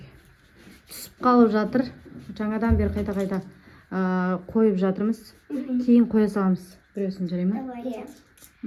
Түсіп қалып жатыр. Жаңадан бері қайта қойып жатырмыз. Кейін қоя саламыз. Біреусін жарай ма?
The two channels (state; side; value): identical; both; correlation 1.00